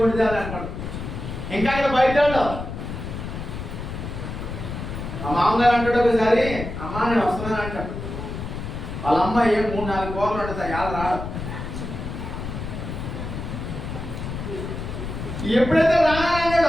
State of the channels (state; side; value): noise; left; rumble, 7 dB below the sound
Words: కొండిదాన్ని అనుకోండి. ఇంకా ఇక్కడ బయట మా మామగారు అంటాడు ఒకసారి, అమ్మ నేను వస్తున్నాను అంటాడు. వాళ్ళ అమ్మ ఏం 3-4 కోర్లు ఉంటుంది, ఎలా రాడు. ఎప్పుడైతే